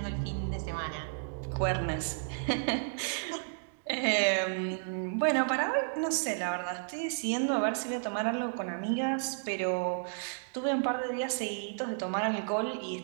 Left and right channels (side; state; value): left; silent; digital silence